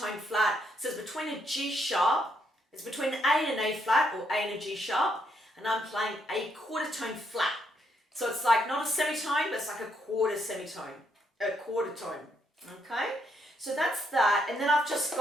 flat, so it's between a G sharp, it's between an A and an A flat, or A and a G sharp, and I'm playing a quarter tone flat. So it's like not a semitone, but it's like a quarter semitone, a quarter tone, okay? So that's that, and then I've just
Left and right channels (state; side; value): normal; both; correlation 0.75